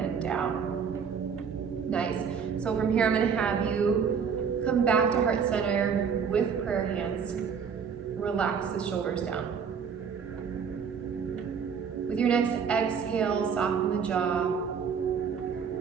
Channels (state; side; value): quieter; left; 6.5 dB